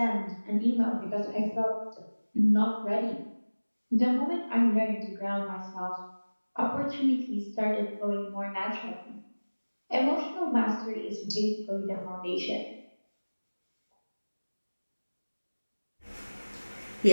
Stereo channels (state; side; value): inverted; both; correlation -1.00